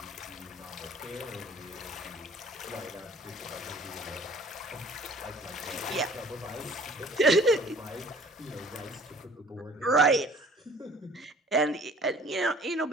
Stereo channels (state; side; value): normal; both; correlation 0.51